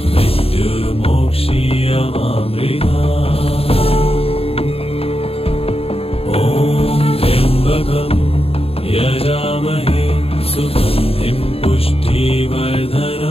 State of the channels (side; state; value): right; late; 0.28 ms